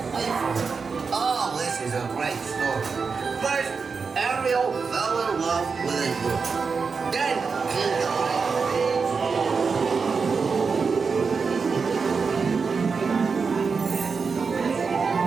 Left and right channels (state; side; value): quieter; left; 5.1 dB